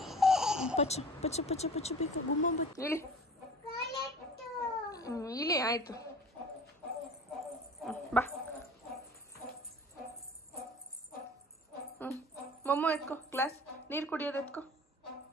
ಪಚ್ಚು ಪಚ್ಚು ಪಚ್ಚು ಪಚ್ಚು ಬೇಕು. ಗುಮ್ಮ ಇಳಿ ಇಳಿ, ಆಯ್ತು ಬಾ. ಮೊಮ್ಮ ಎತ್ಕೋ, ಗ್ಲಾಸ್ ನೀರು ಕುಡಿಯೋದು ಎತ್ಕೋ,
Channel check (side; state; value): both; normal; correlation 0.41